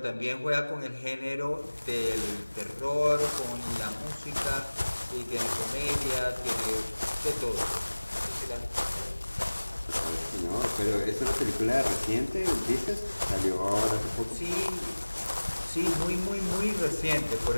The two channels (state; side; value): inverted; both; correlation -1.00